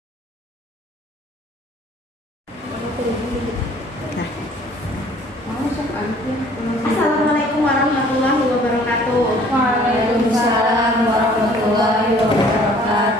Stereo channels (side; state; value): both; normal; correlation 0.55